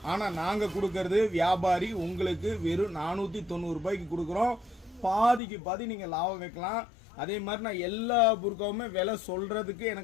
ஆனா நாங்க கொடுக்கறது வியாபாரி உங்களுக்கு வெறும் 490 ரூபாய்க்கு கொடுக்கறோம். பாதிக்கு பாதி நீங்க லாபம் வைக்கலாம். அதே மாதிரி நான் எல்லா புர்காவுமே விலை சொல்றதுக்கு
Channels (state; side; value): drops out; right; at 5.4 s